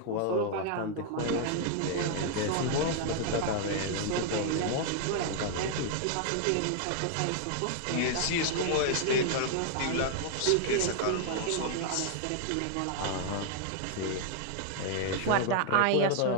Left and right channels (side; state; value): both; different; correlation 0.00